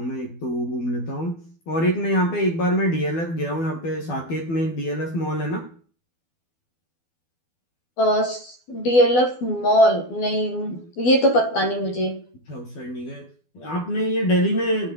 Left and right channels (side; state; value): right; late; 12 ms